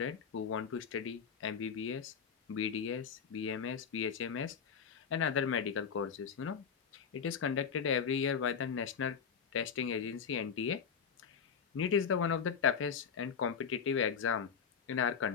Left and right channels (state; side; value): quieter; right; 6.7 dB